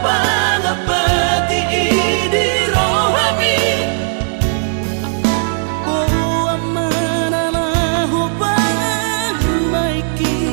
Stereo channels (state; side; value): silent; left; digital silence